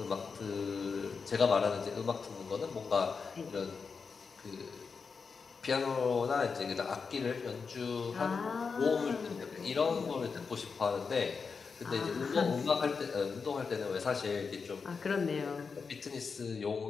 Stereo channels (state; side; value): quieter; right; 5.2 dB